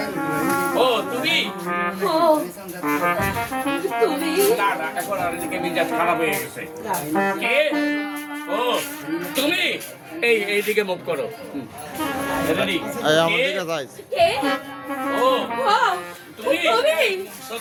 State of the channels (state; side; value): identical; both; correlation 1.00